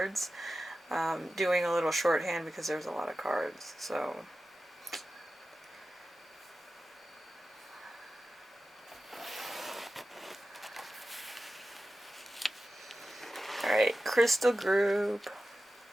Doing a little shorthand because there's a lot of cards, so... Alright, crystal group.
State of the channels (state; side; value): normal; both; correlation 0.93